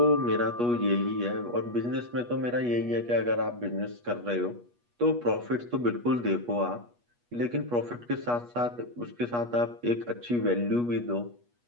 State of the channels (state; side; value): late; left; 8.3 ms